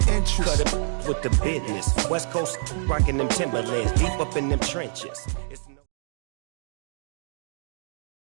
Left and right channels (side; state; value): left; silent; digital silence